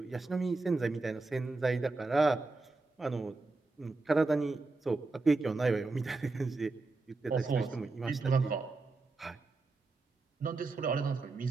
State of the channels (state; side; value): quieter; left; 3.5 dB